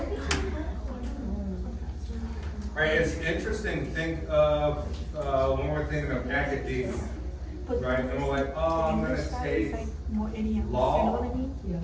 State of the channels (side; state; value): both; identical; correlation 1.00